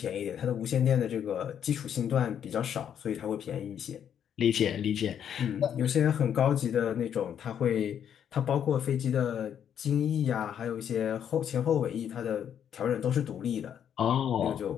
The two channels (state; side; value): quieter; right; 8.9 dB